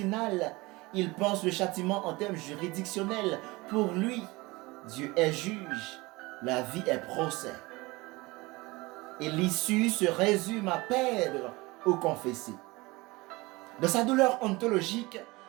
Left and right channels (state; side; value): quieter; left; 22.7 dB